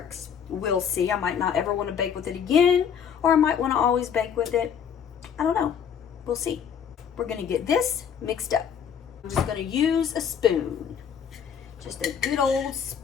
We'll see. I might not ever want to bake with it again, or I might want to always bake with it. I don't know. We'll see. We're going to get this mixed up. I'm just going to use a spoon. Just a good old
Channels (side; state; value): right; quieter; 7.8 dB